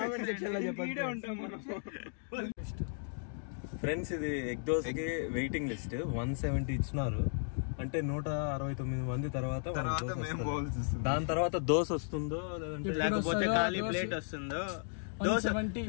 ఫ్రెండ్స్ ఇది ఎగ్ దోశకి వెయిటింగ్ లిస్ట్ 170 ఇచ్చినారు. అంటే 169 మంది తర్వాత దాని తర్వాత దోశ వస్తుందో లేకపోతే ఖాళీ ప్లేట్ వస్తుందో. దోశ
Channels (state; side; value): silent; right; digital silence